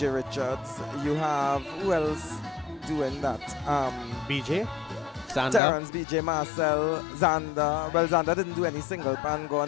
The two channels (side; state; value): right; drops out; at 5.6 s